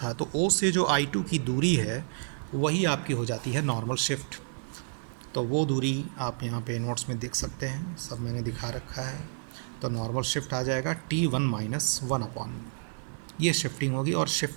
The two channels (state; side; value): silent; left; digital silence